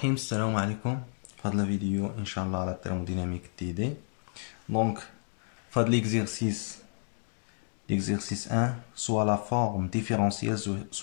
السلام عليكم. في هذا الفيديو ان شاء الله على التhermodynamique تي دي. Donc في هذا l'exercice 1 soit la forme différentielle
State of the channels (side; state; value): right; silent; digital silence